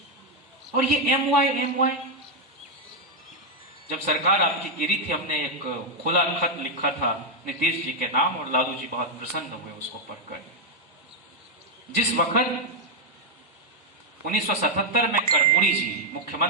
और ये एम वाई जब सरकार आपकी गिरी थी, हमने एक खुला खत लिखा था नीतीश जी के नाम और लालू जी बहुत प्रसन्न हुए उसको पढ़कर। जिस वक्त 1977 में कर्पूरी जी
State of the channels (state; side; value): normal; both; correlation 0.01